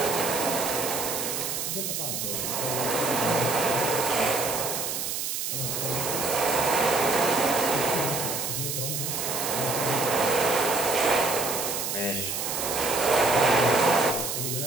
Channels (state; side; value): noise; right; hiss, 3 dB below the sound